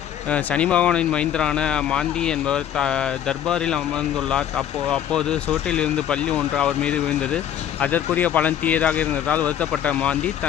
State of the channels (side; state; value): right; quieter; 10.1 dB